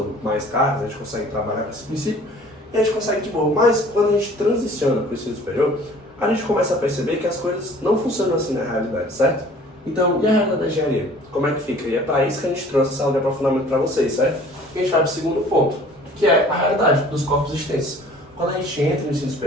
mais cargas, a gente consegue trabalhar com esse princípio, e a gente consegue de boa. Mas, quando a gente transiciona para o ensino superior, a gente começa a perceber que as coisas não funcionam assim na realidade, certo? Então, e a realidade da engenharia? Como é que fica? E é para isso que a gente trouxe essa aula de aprofundamento para vocês, certo? E a gente vai para o segundo ponto, que é a realidade dos corpos extensos. Quando a gente entra no ensino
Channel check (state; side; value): normal; both; correlation 0.50